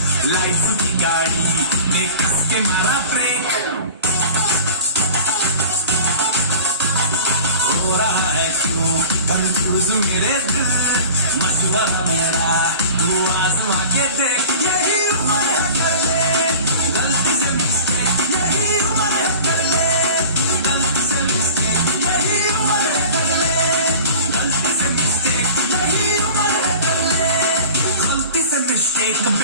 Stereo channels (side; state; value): both; inverted; correlation -0.39